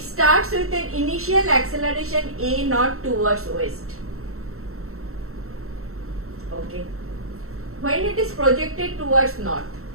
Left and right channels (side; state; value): left; late; 0.63 ms